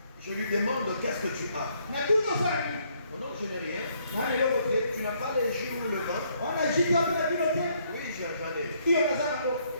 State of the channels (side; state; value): both; inverted; correlation -0.69